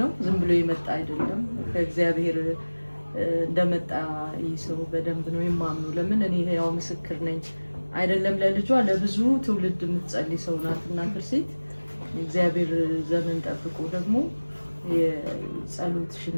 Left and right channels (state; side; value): inverted; both; correlation -1.00